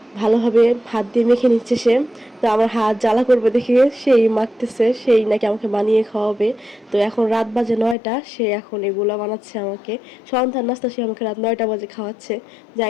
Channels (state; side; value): drops out; right; at 8.0 s